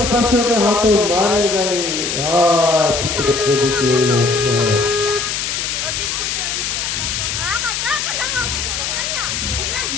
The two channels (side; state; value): left; noise; hiss, 2 dB below the sound